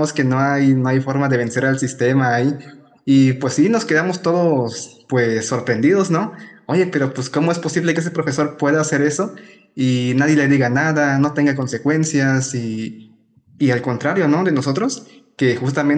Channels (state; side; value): identical; both; correlation 1.00